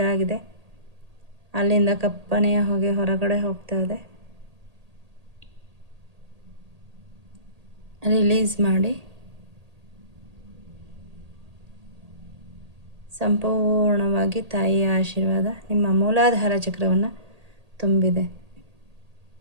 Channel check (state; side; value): late; left; 1.8 ms